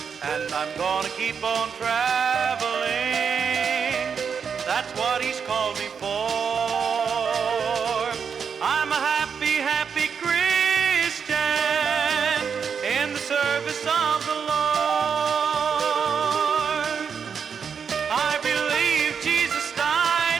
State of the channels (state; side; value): quieter; left; 6.5 dB